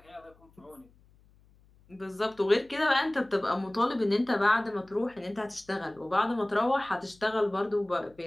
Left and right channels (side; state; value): left; noise; hum, 30 dB below the sound